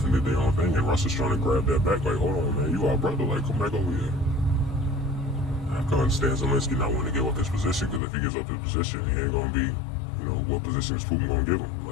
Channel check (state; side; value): drops out; right; at 8.0 s